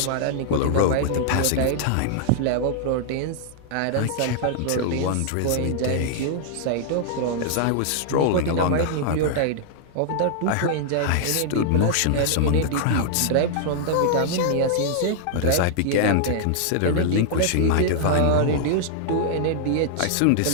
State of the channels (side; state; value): both; different; correlation -0.01